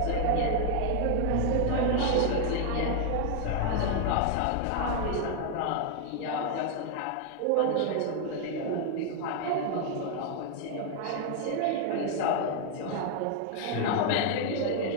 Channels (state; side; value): different; both; correlation 0.00